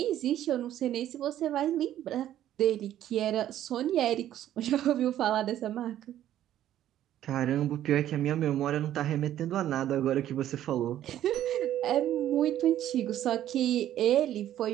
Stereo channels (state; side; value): quieter; left; 12.1 dB